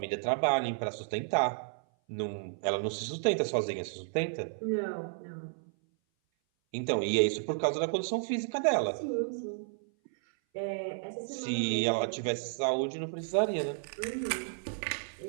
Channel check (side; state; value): left; silent; 56 dB below the other